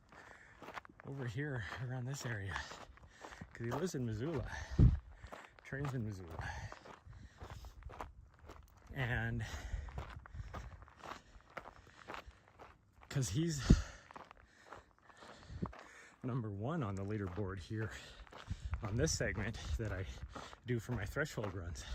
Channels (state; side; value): identical; both; correlation 1.00